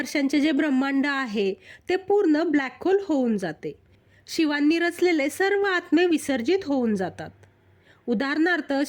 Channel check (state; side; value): identical; both; correlation 1.00